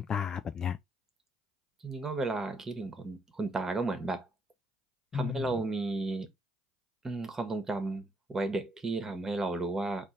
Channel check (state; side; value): normal; both; correlation 0.73